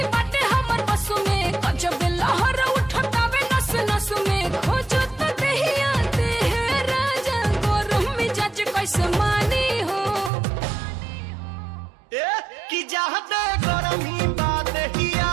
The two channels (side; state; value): left; drops out; at 10.3 s